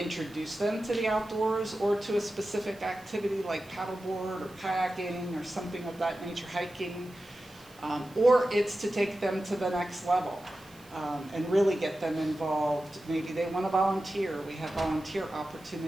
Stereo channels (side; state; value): right; noise; hiss, 25 dB below the sound